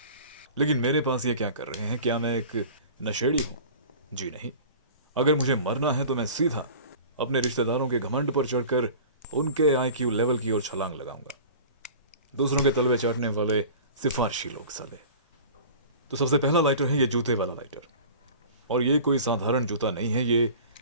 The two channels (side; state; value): both; inverted; correlation -0.40